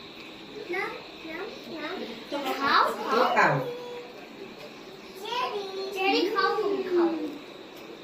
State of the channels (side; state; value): both; identical; correlation 1.00